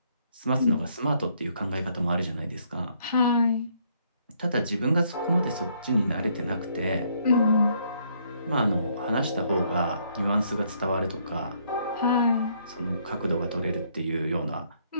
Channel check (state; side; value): inverted; both; correlation -0.69